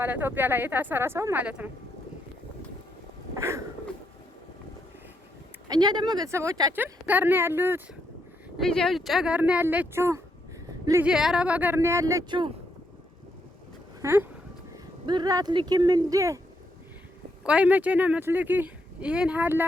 ኢትዮጵያ ላይ የታሰረ ሰው ማለት ነው። እኛ ደግሞ ቤተሰቦቻችን ጋር ነው ያሉት። ልጄ ውጭ ሀገር ነው ያለችው። ልጄ አረብ ሀገር ነው ያለችው። ብር አትልኪም እንዴ? ቆይ መቼ ነው የምትልኪ? ይሄን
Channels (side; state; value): both; normal; correlation 0.77